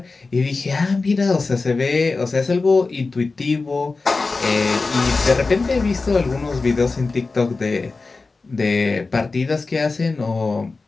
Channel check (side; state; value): right; quieter; 3.9 dB